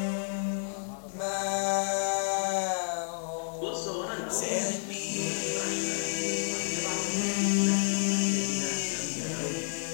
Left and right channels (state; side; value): silent; right; 58 dB below the other